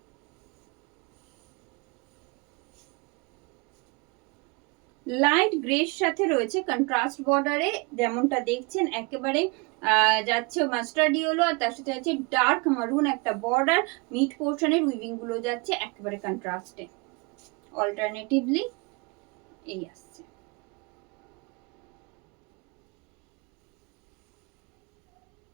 Light গ্রের সাথে রয়েছে কন্ট্রাস্ট বর্ডারে, যেমনটা দেখছেন একেবারে যাচ্ছে মাস্টার্ড ইয়েলো, আর তার সাথে যাচ্ছে ডার্ক মারুন একটা বর্ডার। মিড পোর্শনের উইভিং গুলো যাচ্ছে একেবারে কন্ট্রাস্টে, অল্টারনেটিভলি এই আসছে।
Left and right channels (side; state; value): left; quieter; 29.2 dB